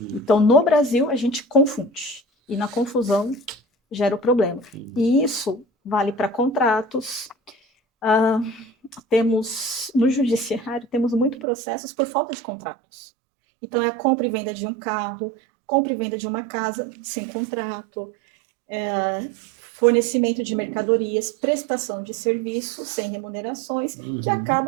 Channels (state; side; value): drops out; left; at 11.5 s